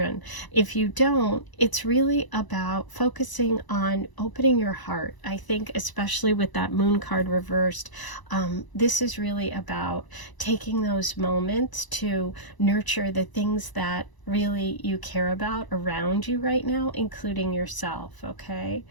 If you don't, it's really about focusing on opening your heart. I think especially with that moon card reversed, this is really about taking those moments to nurture the things that really you care about around you right now, including yourself. Okay,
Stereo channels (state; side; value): late; right; 1.0 ms